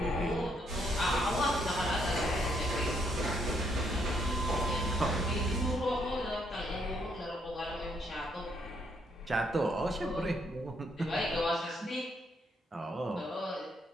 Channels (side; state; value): both; normal; correlation 0.73